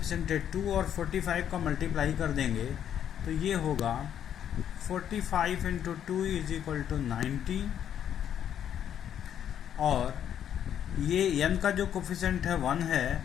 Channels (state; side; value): quieter; right; 9.6 dB